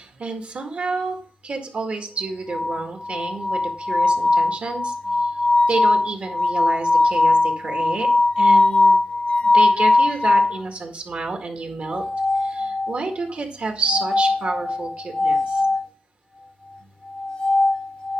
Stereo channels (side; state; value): both; normal; correlation 0.94